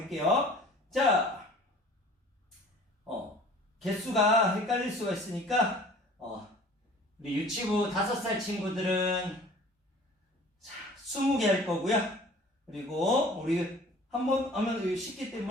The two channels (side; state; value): both; normal; correlation 0.48